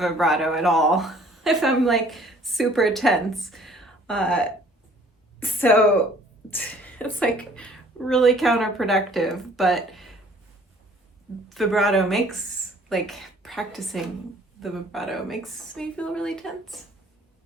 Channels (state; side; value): normal; both; correlation 0.56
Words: at all if I'm like super tense. So it's like really counterproductive, but vibrato makes, like practicing the vibrato makes me feel really tense.